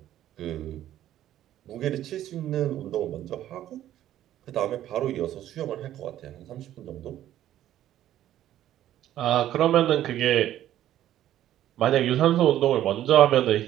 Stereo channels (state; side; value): quieter; left; 12.5 dB